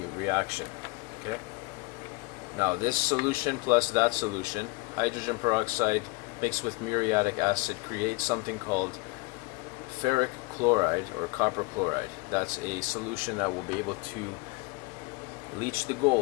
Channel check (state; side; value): quieter; right; 25.3 dB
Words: reaction. Okay. Now this solution plus that solution, hydrogen peroxide mixed with muriatic acid, creates something called ferric chloride or copper chloride. That's a solution that will be able to leach the